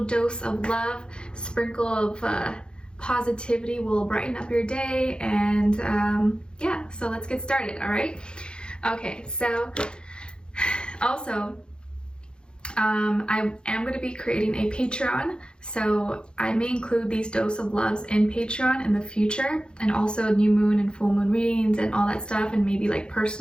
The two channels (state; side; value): late; right; 0.050 ms